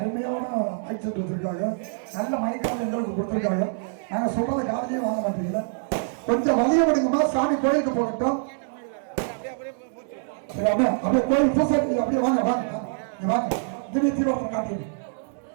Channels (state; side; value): silent; left; digital silence